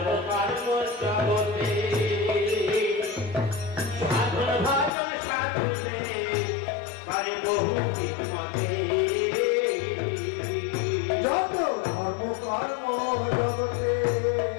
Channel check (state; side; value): drops out; right; at 4.9 s